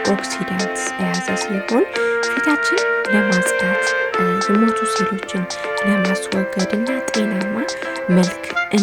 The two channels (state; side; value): identical; both; correlation 1.00